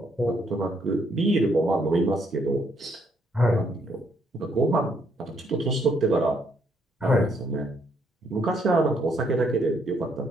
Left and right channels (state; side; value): normal; both; correlation 0.71